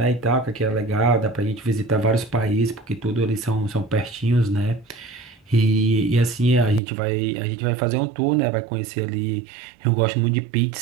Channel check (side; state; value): left; drops out; at 6.8 s